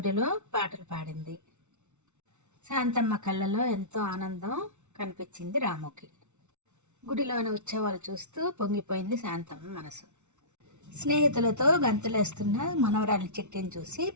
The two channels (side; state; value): left; late; 0.83 ms